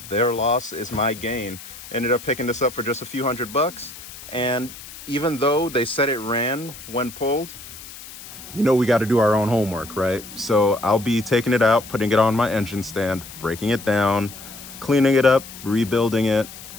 their loss is my gain. Ended up picking this up for just a few $100. And even though they said it ran when pulled, you know we got to do our own homework, right? So I'll be taking it out, putting it on my engine stand, breaking it down, cleaning it up, rebuilding it,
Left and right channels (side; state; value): left; noise; hiss, 15 dB below the sound